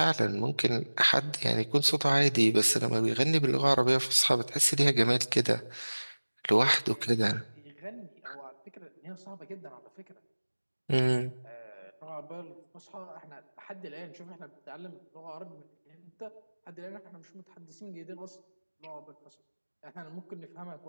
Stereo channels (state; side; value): inverted; both; correlation -1.00